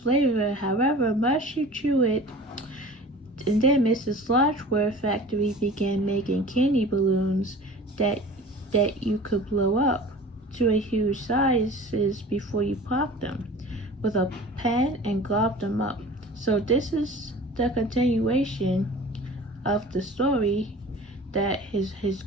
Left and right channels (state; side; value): normal; both; correlation 0.41